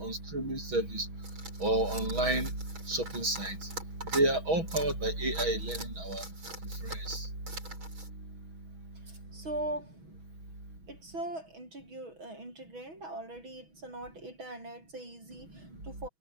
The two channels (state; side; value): late; left; 6.2 ms